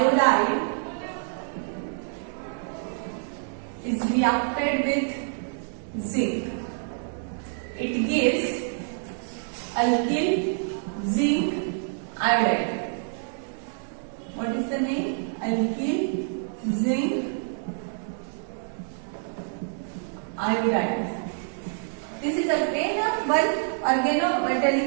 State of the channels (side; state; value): left; silent; digital silence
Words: is reacted with zinc. It gives alkyl zinc iodide. What is the name? Alkyl zinc iodide. This is again one